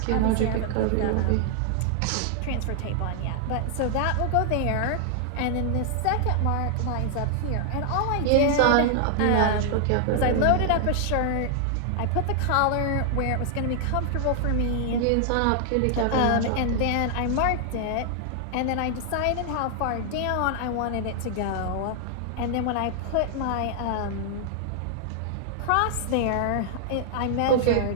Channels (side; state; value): both; different; correlation 0.00